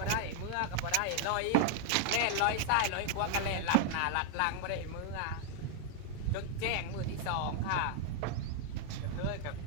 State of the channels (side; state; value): both; different; correlation 0.00